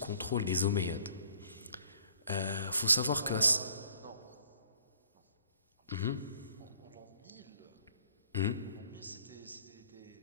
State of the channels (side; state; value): both; inverted; correlation -0.60